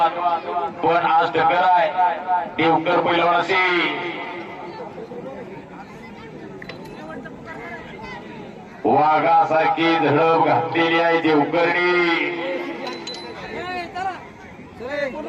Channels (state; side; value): identical; both; correlation 1.00